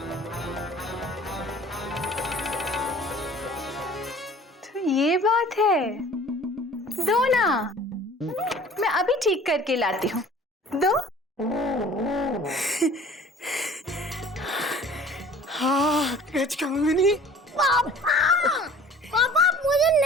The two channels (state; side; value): normal; both; correlation 0.47